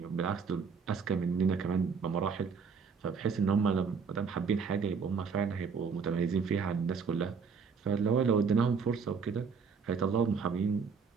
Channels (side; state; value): left; quieter; 5.7 dB